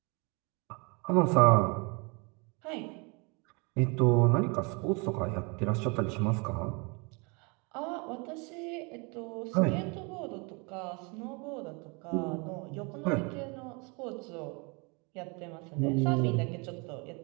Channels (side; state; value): left; quieter; 30.9 dB